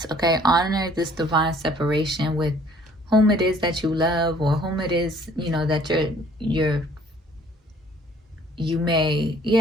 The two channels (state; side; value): normal; both; correlation 0.57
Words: okay? Honor this divine separation with whom it is that you love, or whom it is, you know, that you may,